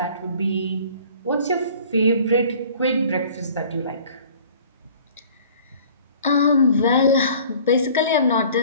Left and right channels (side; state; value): both; inverted; correlation -0.50